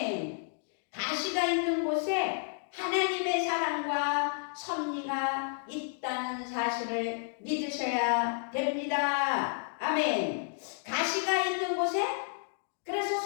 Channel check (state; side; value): silent; right; digital silence